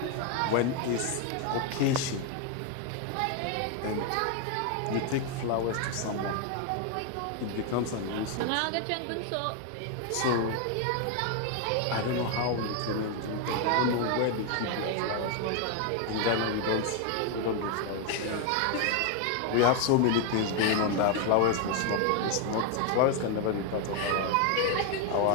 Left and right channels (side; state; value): both; different; correlation 0.01